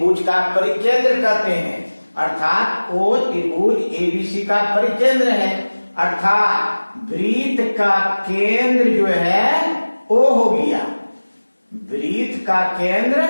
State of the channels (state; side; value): inverted; both; correlation -1.00